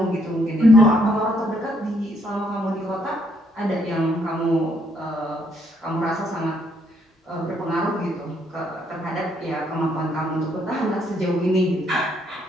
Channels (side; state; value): both; normal; correlation 0.71